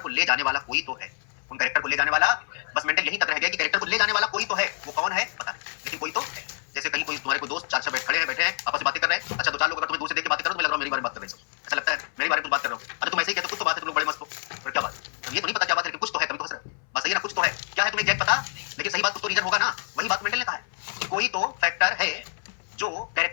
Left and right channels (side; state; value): right; silent; 60 dB below the other